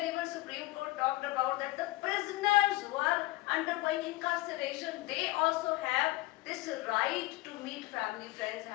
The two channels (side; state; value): right; quieter; 19.7 dB